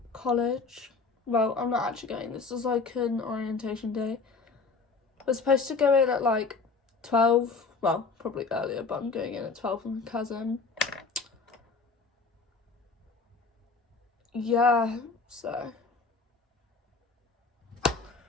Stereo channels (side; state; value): right; quieter; 4.4 dB